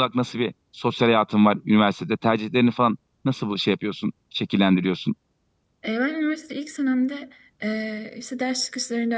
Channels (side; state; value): both; identical; correlation 1.00